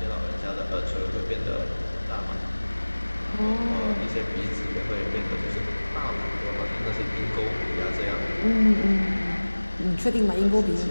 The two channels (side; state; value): both; inverted; correlation -1.00